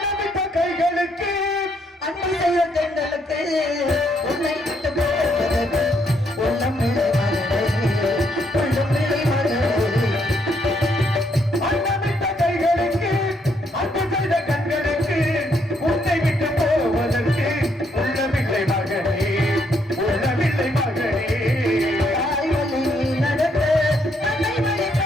செய்த கண்களுக்கு உன்னை விட்டு போவதற்கு உள்ளம் பிள்ளை மகளே, உள்ளம் பிள்ளை மகளே. அன்னமிட்ட கைகளுக்கு அன்பு செய்த கண்களுக்கு உன்னை விட்டு போவதற்கு உள்ளம் பிள்ளை மகளே, உள்ளமில்லை மகளே. தாய்வழி நடக்க தன்னை வழி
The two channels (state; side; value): normal; both; correlation 0.73